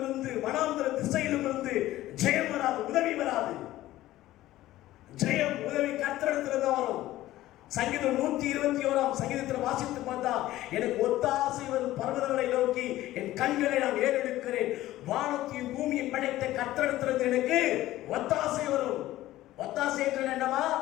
இருந்து, வனாந்தர திசையிலும் இருந்து ஜெயம் வராது, உதவி வராது. ஜெயம், உதவி கர்த்தரிடத்திலிருந்து வரும். சங்கீதம் 121 சங்கீதத்தில் வாசித்து பார்த்தா, எனக்கு ஒத்தாசை வரும் பர்வதங்களை நோக்கி என் கண்களை நான் ஏறெடுக்கிறேன். வானத்தையும் பூமியை படைத்த கர்த்தரிடத்திலிருந்து எனக்கு ஒத்தாசை வரும். ஒத்தாசை என்று என்னவா?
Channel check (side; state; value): right; quieter; 15.4 dB